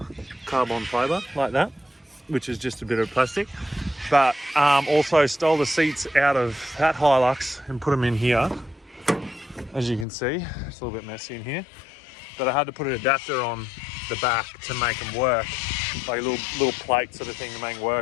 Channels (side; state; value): right; drops out; at 10.1 s